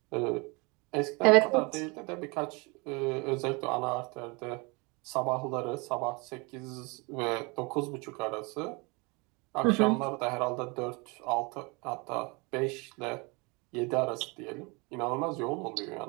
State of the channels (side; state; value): left; quieter; 28.3 dB